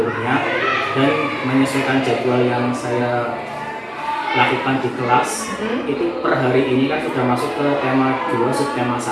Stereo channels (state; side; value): identical; both; correlation 1.00